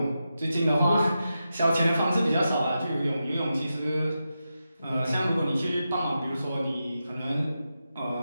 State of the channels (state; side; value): inverted; both; correlation -0.89